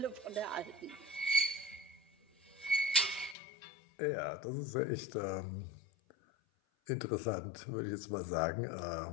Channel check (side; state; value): right; drops out; at 3.4 s